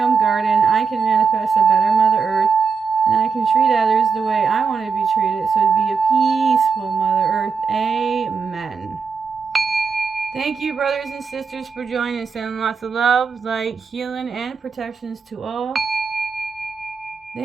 own garden. I can manifest a better Mother Earth. And I can treat others the way I want to be treated, so to be a peaceful Mother Earth. Amen. Thank you, brothers and sisters, for joining. Sending lots of love, light, healing, and protections to all.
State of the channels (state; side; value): quieter; left; 5.4 dB